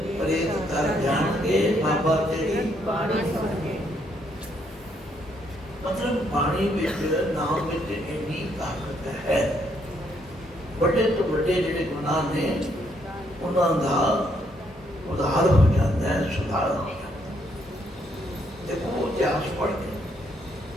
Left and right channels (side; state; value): both; normal; correlation 0.72